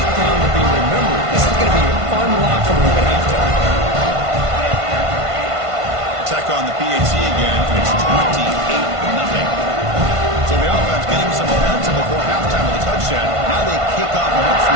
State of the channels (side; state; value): left; late; 1.5 ms